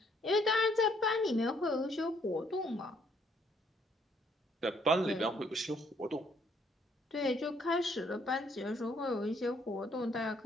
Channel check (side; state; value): both; normal; correlation 0.67